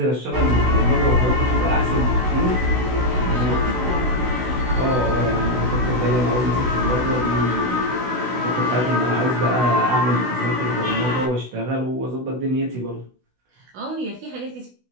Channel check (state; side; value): late; left; 16 ms